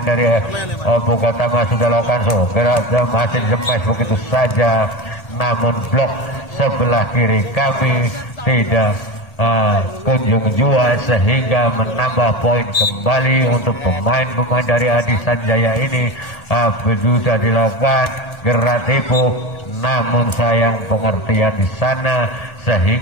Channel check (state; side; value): late; right; 1.3 ms